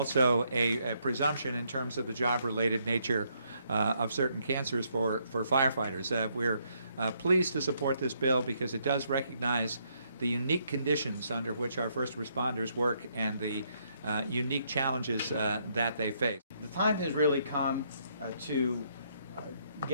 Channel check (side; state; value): both; inverted; correlation -0.73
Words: a presumption in terms of the job-related nature of certain cancers for firefighters. We're pleased to support this bill because it does recognize the unique conditions under which our first responders work and the unique challenges that they face. The time has really come to